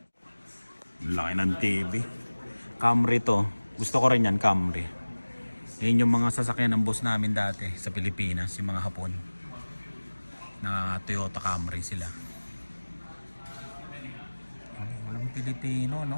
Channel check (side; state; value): both; inverted; correlation -1.00